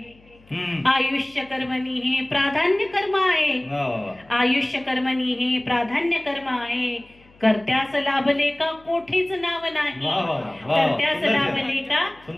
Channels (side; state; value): left; noise; hum, 28 dB below the sound